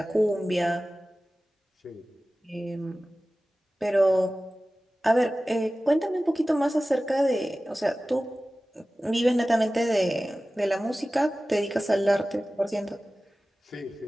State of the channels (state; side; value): normal; both; correlation 0.96